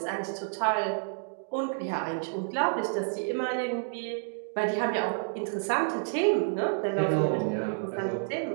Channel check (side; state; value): left; silent; digital silence